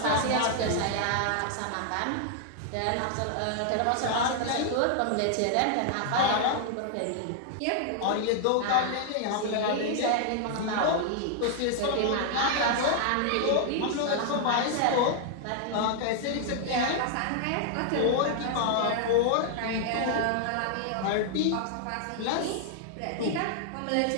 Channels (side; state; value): both; different; correlation 0.00